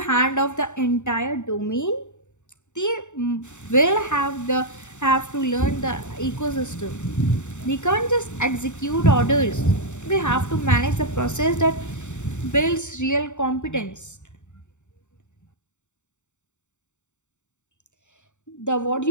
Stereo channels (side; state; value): right; late; 0.84 ms